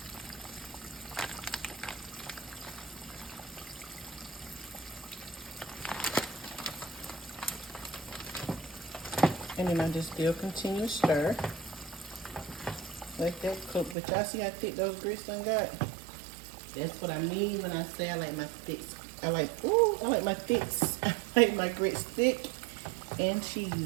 And then I just still continue to stir. Let that cook. But y'all see how thick those grits done got? That's what I mean when I say I like my thicks. I like my thicks. I like my grits thick and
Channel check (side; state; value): left; drops out; at 14.0 s